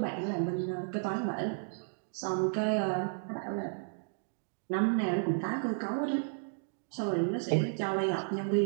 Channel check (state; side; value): silent; left; digital silence